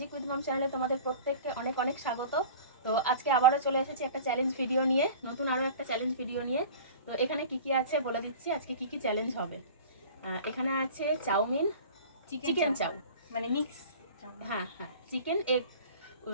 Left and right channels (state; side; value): inverted; both; correlation -0.40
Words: উইথ মম চ্যানেলে তোমাদের প্রত্যেককে অনেক অনেক স্বাগত। তো আজকে আবারও চলে এসেছি একটা চ্যালেঞ্জ ভিডিও নিয়ে, নতুন আরও একটা চ্যালেঞ্জ ভিডিও নিয়ে। তো এখানে কি কি আছে বলে দিচ্ছি, আজকে কি কি চ্যালেঞ্জ হবে। এখানে আছে চাউমিন, চিকেন চাউ, মানে মিক্স। হ্যাঁ হ্যাঁ,